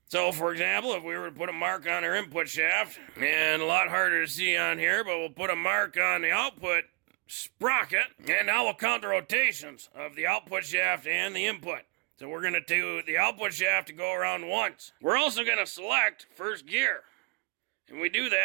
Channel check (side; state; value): left; quieter; 29.0 dB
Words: So, for example, if we were to put a mark on our input shaft, and a lot harder to see on here, but we'll put a mark on the output sprocket, and now we'll count the rotations of the output shaft and the input. So we're going to do the output shaft to go around once. We're also going to select first gear. And we do